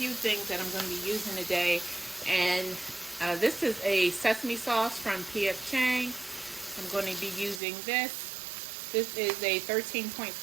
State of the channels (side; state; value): left; drops out; at 7.6 s